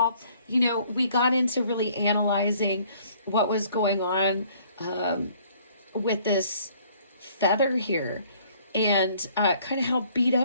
We got into really analyzing what was going on with this feather here, and kind of how beat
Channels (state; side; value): inverted; both; correlation -0.59